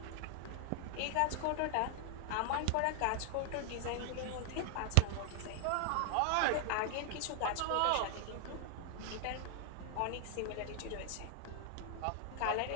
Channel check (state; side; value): different; both; correlation 0.00